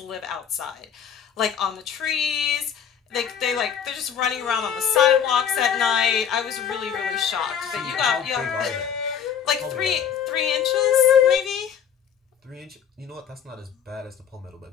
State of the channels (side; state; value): right; quieter; 8.2 dB